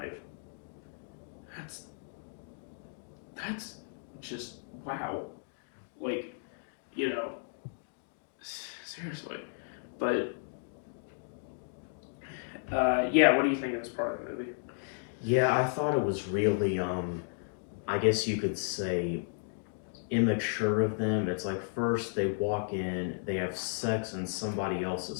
That's just, wow. Like, seriously. But, what do you think of this part of the movie? Yeah, I thought it was really, I guess you could say, immature of them. It's like, first they walk in, they have sex in somebody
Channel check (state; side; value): silent; right; digital silence